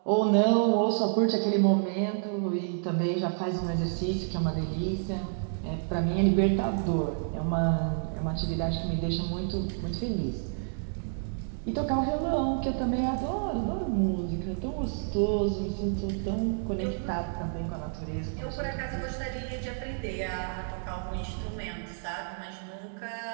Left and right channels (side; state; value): left; silent; digital silence